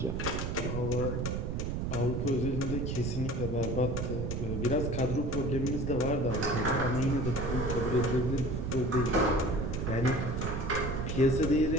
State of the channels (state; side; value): noise; right; rumble, 2 dB below the sound